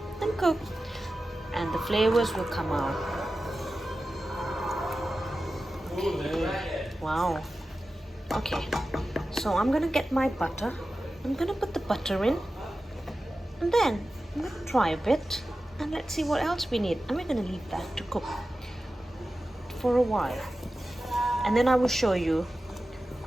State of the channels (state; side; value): normal; both; correlation 0.94